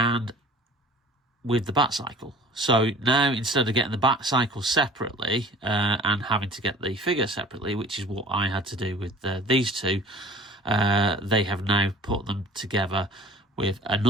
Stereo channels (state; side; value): normal; both; correlation 0.46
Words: with the Bat Cycle. So now, instead of getting the Bat Cycle separately and having to get the figure separately, which is what I had to do with these two, they have now put them together with